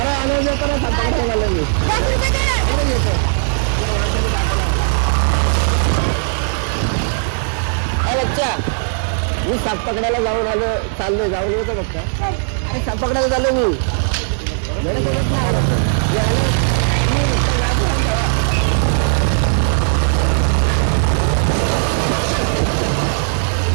आल्यावर देतो ना, साप पकडायला झालं मी. बच्चा मी साप पकडायला जाऊन आलो, चाललोय, जाऊन येतो फक्त. अरे साप पकडायला चाललो मी.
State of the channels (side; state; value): left; silent; 64 dB below the other